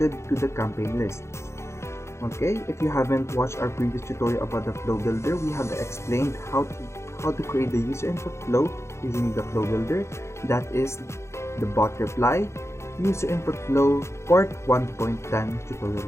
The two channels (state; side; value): late; right; 0.13 ms